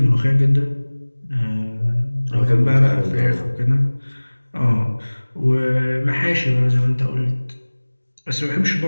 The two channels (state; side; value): inverted; both; correlation -1.00